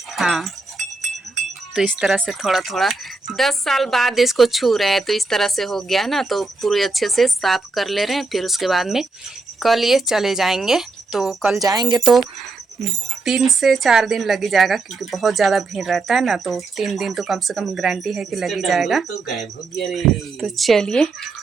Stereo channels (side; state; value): left; quieter; 3.6 dB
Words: हाँ, तो इस तरह से थोड़ा थोड़ा 10 साल बाद इसको छू रहे हैं, तो इस तरह से हो गया ना। तो पूरे अच्छे से साफ कर ले रहे हैं। फिर उसके बाद में कल ये चले जाएंगे। तो कल जाएंगे तो 3 से 4 दिन लग ही जाएगा, क्योंकि बहुत ज़्यादा भीड़ रहता है ना। तो 3 दिन तो कम से कम गारंटी है कि लग ही जाएगा। तो गायब हो गया रे। तो चलिए